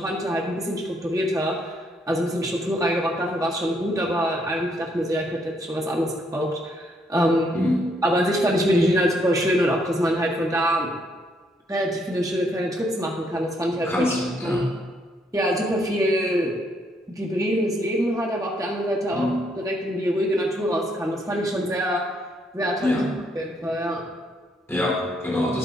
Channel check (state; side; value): normal; both; correlation 0.72